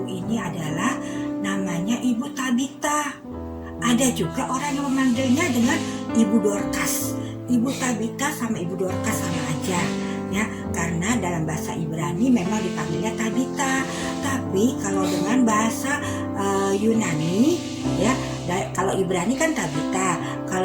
ini adalah namanya Ibu Tabita. Ada juga orang yang memanggilnya dengan Ibu Dorcas. Ibu Tabita sama Ibu Dorcas sama aja ya, karena dalam bahasa Ibrani memang dipanggilnya Tabita. Tapi kalau dengan bahasa Yunani ya, kalau Ibrani kan Tabita,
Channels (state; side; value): identical; both; correlation 1.00